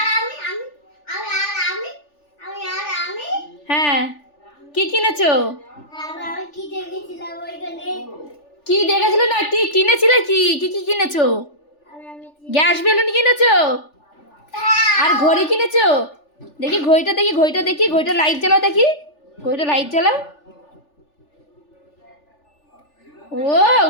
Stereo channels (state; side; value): late; right; 3.4 ms